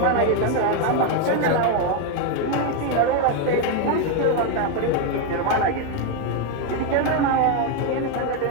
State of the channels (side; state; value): both; different; correlation 0.01